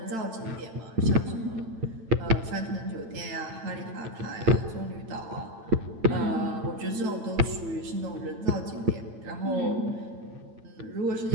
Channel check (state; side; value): late; left; 8.9 ms